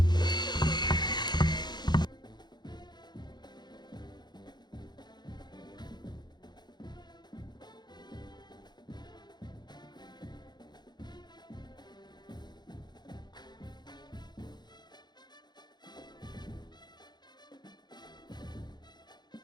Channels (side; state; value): right; late; 0.21 ms